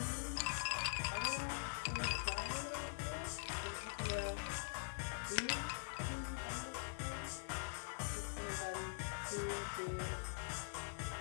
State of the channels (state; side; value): silent; right; digital silence